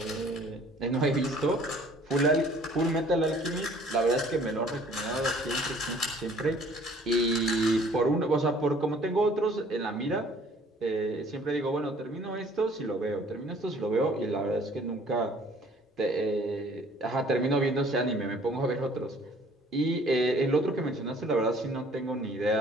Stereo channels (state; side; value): normal; both; correlation 0.55